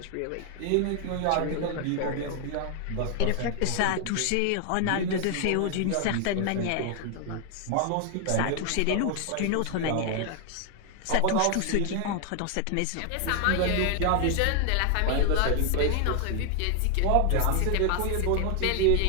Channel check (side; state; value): both; different; correlation 0.00